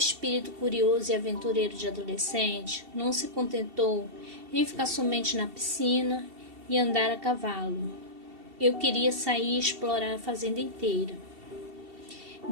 curioso e aventureiro de adolescente não se contentou em ficar somente na piscina e andar a cavalo. Eu queria sair e explorar a fazenda inteira.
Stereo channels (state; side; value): late; left; 2.7 ms